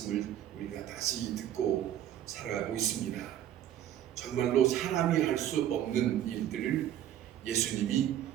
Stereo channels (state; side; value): quieter; left; 11.3 dB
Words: 우리가 다시 듣고 살아가고 있습니다. 정말로 사람이 할 수 없는 일들을 예수님이